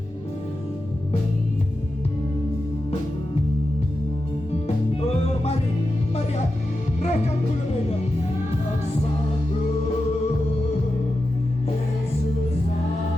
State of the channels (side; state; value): both; normal; correlation 0.90